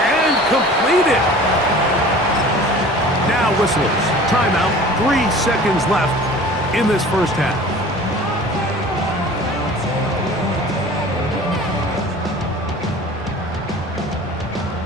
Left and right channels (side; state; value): both; normal; correlation 0.43